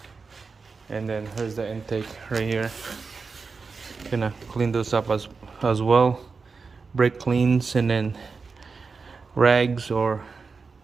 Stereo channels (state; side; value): quieter; left; 4.7 dB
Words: And then here's the intake right here. Gonna clean those up as well. Brake cleans and then rags or